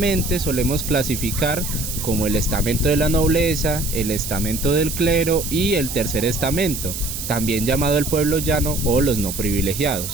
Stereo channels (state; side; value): noise; right; hiss, 6 dB below the sound